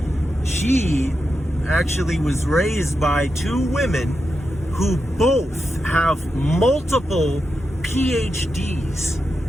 she actually was raised by two women who both have multiple PhDs.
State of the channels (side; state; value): both; normal; correlation 0.87